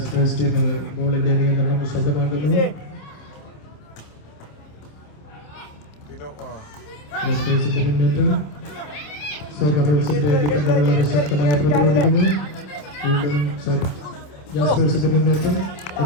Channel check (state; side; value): late; right; 27 ms